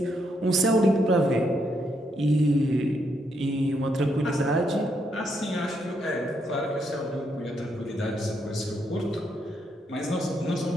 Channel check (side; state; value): both; normal; correlation 0.77